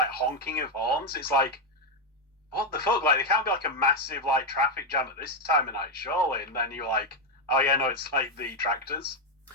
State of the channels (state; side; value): normal; both; correlation 0.04